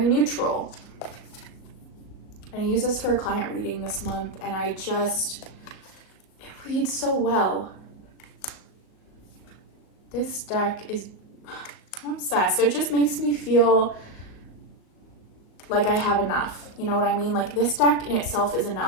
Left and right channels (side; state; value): right; late; 37 ms